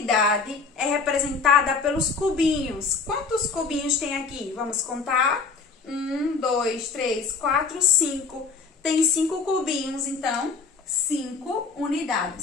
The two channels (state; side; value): quieter; right; 4.8 dB